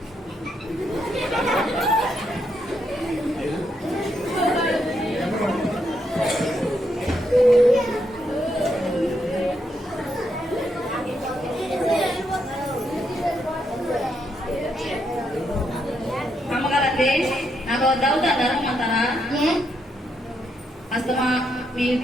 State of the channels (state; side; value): normal; both; correlation 0.79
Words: అమ్మగారండి నాకు దౌతా ధరమంటారా? ఏ అస్తమా